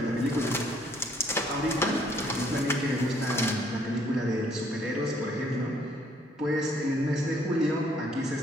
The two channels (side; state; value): both; normal; correlation 0.65